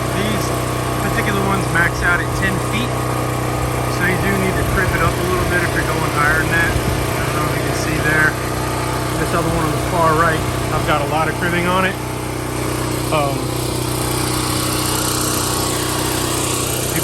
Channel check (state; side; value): identical; both; correlation 1.00